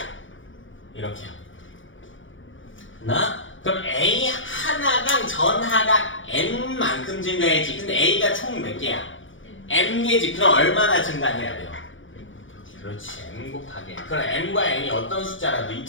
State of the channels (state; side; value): late; right; 0.56 ms